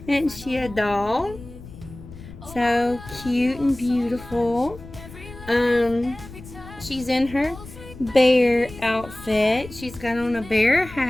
Isn't she a doll? So cute and beautiful. She's in her bear outfit. She's got on a bear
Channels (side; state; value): left; noise; rumble, 16 dB below the sound